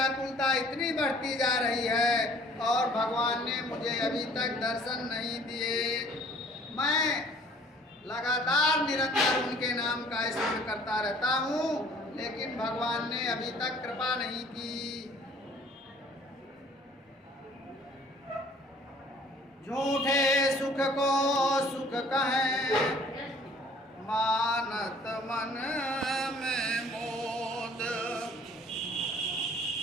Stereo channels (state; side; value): normal; both; correlation 0.54